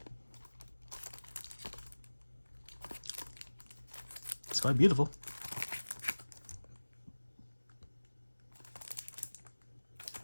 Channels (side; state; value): both; inverted; correlation -1.00